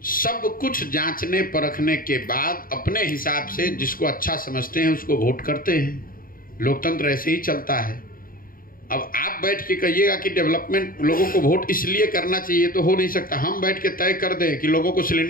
सब कुछ जांचने परखने के बाद अपने हिसाब से जिसको अच्छा समझते हैं उसको वोट करते हैं। लोकतंत्र ऐसे ही चलता है। अब आप बैठ के कहिएगा कि डेवलपमेंट लोगों को वोट इसलिए करना चाहिए, तो हो नहीं सकता। हम बैठ के तय कर दें कि लोगों को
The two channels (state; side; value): late; right; 0.41 ms